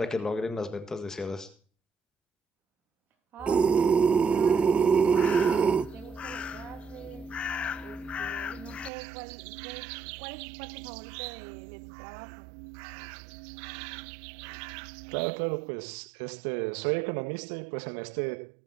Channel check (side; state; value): left; drops out; at 8.9 s